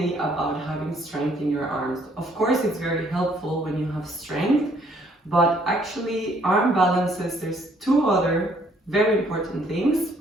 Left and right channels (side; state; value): both; normal; correlation 0.64